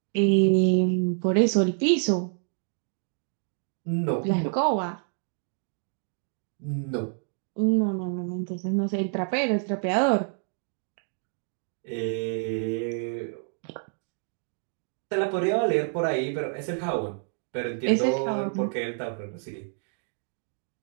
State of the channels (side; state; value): left; silent; 59 dB below the other